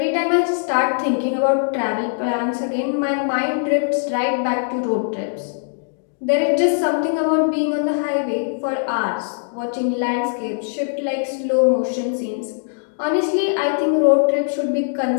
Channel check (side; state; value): right; silent; digital silence